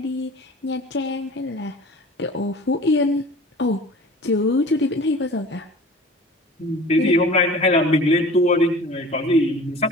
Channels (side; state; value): both; normal; correlation 0.42